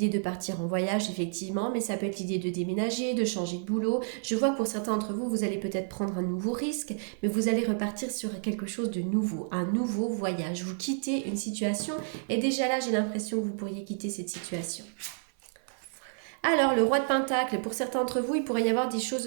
de partir en voyage effectivement, mais ça peut être l'idée de déménager, de changer de boulot. Je vois que pour certains d'entre vous, vous allez peut-être prendre un nouveau risque, mais vous allez repartir sur quelque chose de nouveau, un nouveau voyage. Vous quittez une situation et déjà là, j'ai l'impression que vous pourriez quitter cette situation. Alors, le roi de Pentacle, pour certains d'entre vous, il pourrait y avoir des choses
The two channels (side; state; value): left; silent; 55 dB below the other